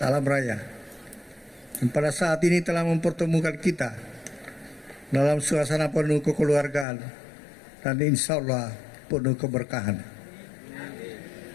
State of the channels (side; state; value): right; drops out; at 6.9 s